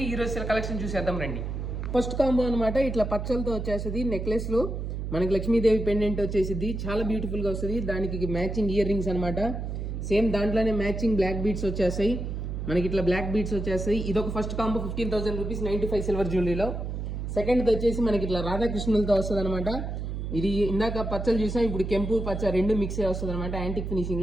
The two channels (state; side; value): noise; right; hum, 4 dB below the sound